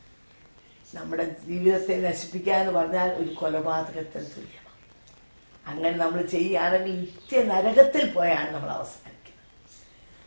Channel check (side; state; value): both; inverted; correlation -1.00